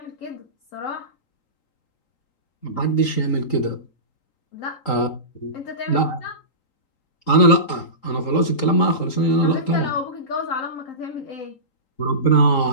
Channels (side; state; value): right; late; 3.8 ms